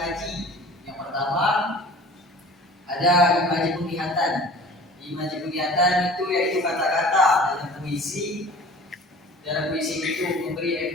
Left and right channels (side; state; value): both; normal; correlation 0.44